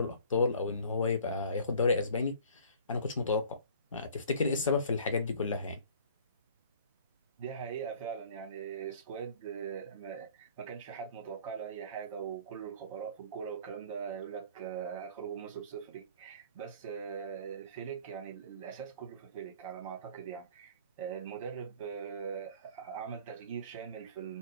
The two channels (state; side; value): inverted; both; correlation -0.50